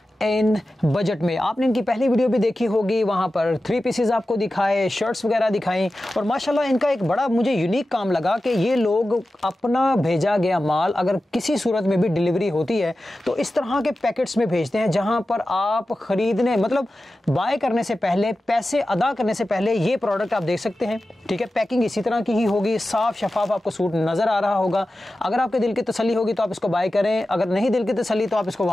इन बजट में आपने इनकी पहली वीडियो भी देखी होगी, वहाँ पर 3 पीसेस आपको दिखाए, शर्ट्स वगैरह दिखाई। और माशाल्लाह इनका एक बड़ा मुझे यूनिक काम लगा कि ये लोग अपना भेजा गया माल अगर किसी सूरत में भी डिलीवरी होती है तो इस तरह के पैकेट्स में भेजते हैं, जहाँ पर आप खरीदने मतलब बाय करने से पहले, पैसे अदा करने से पहले ये प्रोडक्ट आप देख सकते हैं। ठीक है, पैकिंग इसी तरह की ही होगी, साफ शफाफ आपको सूट नजर आ रहा होगा। अगर आपके दिल की तसल्ली होगी तो आप इसको बाय करें, अगर नहीं दिल की तसल्ली तो आप इसको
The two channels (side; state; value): both; normal; correlation 0.94